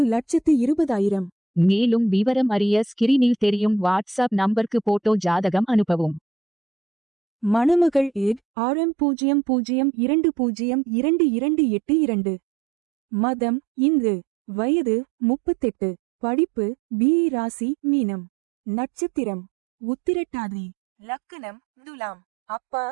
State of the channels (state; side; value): drops out; left; at 8.4 s